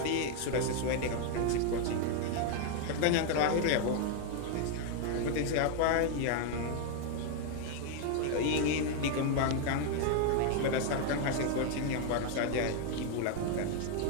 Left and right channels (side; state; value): both; different; correlation 0.01